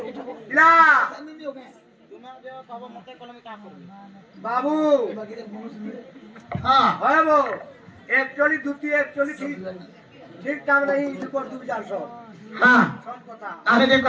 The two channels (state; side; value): identical; both; correlation 1.00